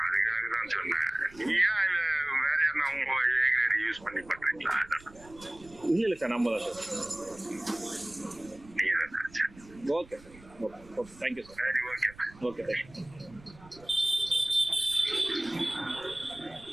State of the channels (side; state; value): right; noise; rumble, 22 dB below the sound